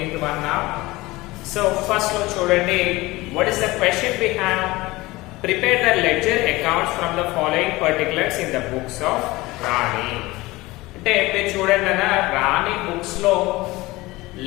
one now. So first lo chudandi, what is the question we have? Prepare the ledger accounts from the following particulars in the books of Rani. అంటే మీరు చూడండి అన్న రాణి బుక్స్ లో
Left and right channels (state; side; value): quieter; right; 20.4 dB